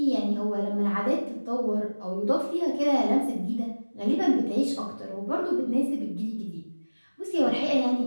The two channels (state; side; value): inverted; both; correlation -1.00